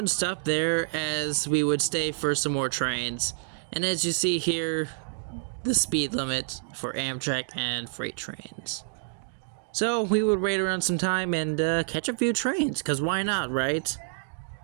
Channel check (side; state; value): left; silent; digital silence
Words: stop there, as we would stay for some more trains. And as you see here, the speed limit for Amtrak and freight trains. So we would wait around some time and catch a few trains, because why not, right?